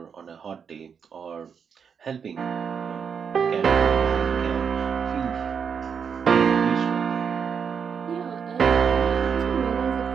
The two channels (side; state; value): left; quieter; 6.8 dB